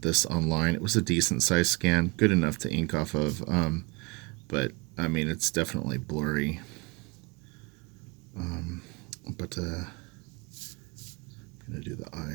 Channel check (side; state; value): left; quieter; 26.2 dB